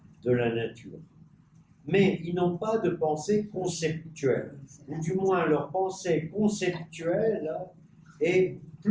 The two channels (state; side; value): identical; both; correlation 1.00